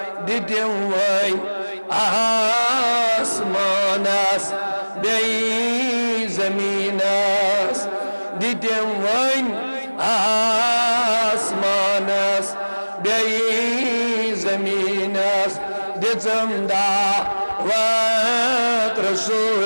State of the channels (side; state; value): both; inverted; correlation -1.00